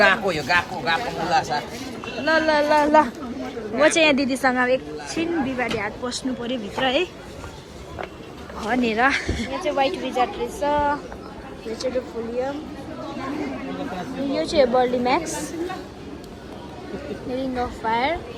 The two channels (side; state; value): both; identical; correlation 1.00